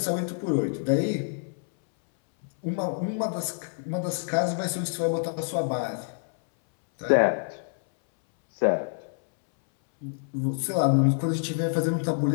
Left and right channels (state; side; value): silent; right; 60 dB below the other